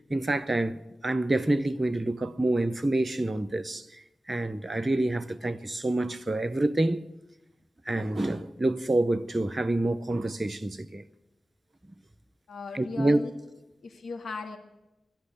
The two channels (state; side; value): normal; both; correlation 0.96